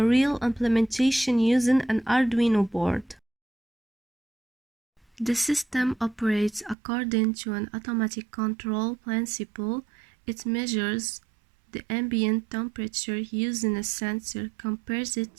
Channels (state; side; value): drops out; left; at 6.8 s